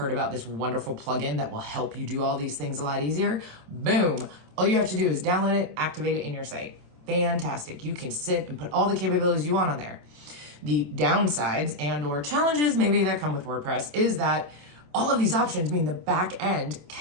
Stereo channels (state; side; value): late; left; 27 ms